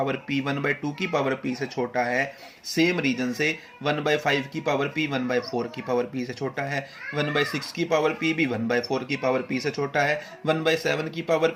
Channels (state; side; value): identical; both; correlation 1.00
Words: p 1/2 की पावर p से छोटा है, सेम रीजन से 1/5 की पावर p 1/4 की पावर p से छोटा है, 1/6 की पावर p भी 1/4 की पावर p से छोटा है, 1/7 की